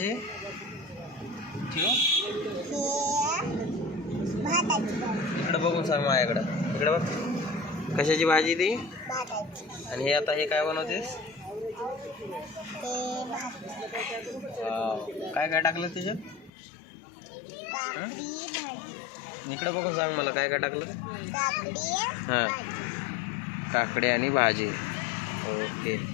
इकडे बघून सांग माझ्याकडं. इकडे बघ. कशाची भाजी ती? आणि हे आता हे काय बनवतेस? काय काय टाकलं त्याच्यात? इकडे बघून सांग मला काय काय टाकलं. हां, काकडी आणि भाजी. ओके.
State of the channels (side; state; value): right; drops out; at 16.5 s